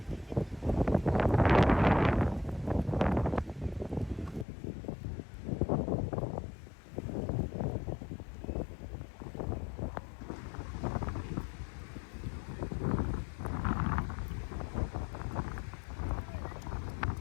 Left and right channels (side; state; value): right; drops out; at 4.5 s